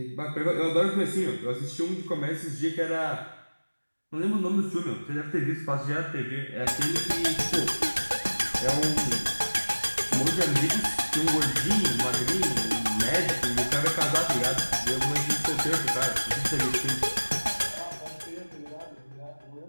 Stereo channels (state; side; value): inverted; both; correlation -1.00